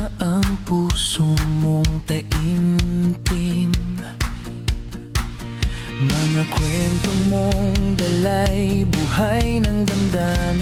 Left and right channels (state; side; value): identical; both; correlation 1.00